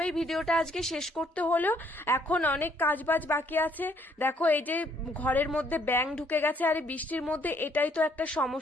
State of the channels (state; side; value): normal; both; correlation 0.66